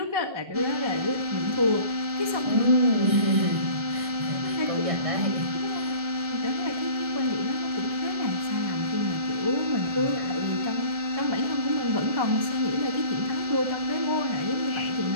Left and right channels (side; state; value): left; late; 1.4 ms